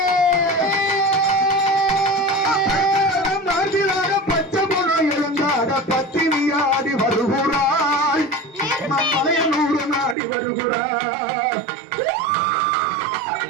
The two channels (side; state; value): left; drops out; at 10.2 s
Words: மார்பிலாட பச்சை போனோ இழந்தாட பத்தினியாடி வருகிறாள். மலைய 100 நாடி வருகிறாள்.